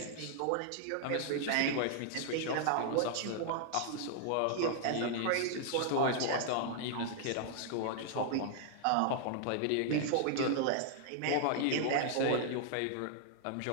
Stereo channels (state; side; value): different; both; correlation -0.01